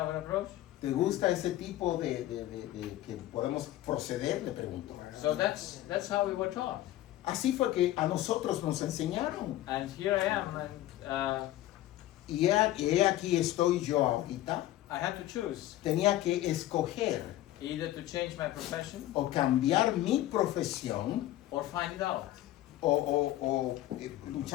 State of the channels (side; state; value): right; quieter; 14.7 dB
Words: an approach? ¿Te gusta ese tipo de que podemos proceder? Le pregunto. So that's how we were taught. Así fue que a nosotros nos enseñaron. And here I am, and Y he aquí estoy yo ahorita. I had to choose Tenía que escoger either to change my profession o cambiar mi profesión or find it out. o